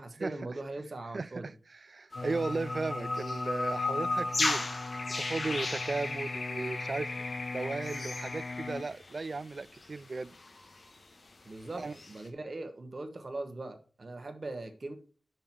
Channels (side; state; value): both; normal; correlation 0.93